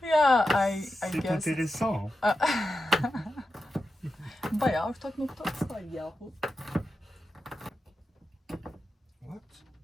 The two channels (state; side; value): normal; both; correlation 0.90